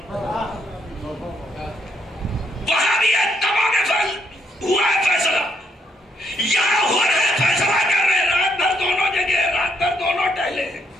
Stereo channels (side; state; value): both; normal; correlation 0.73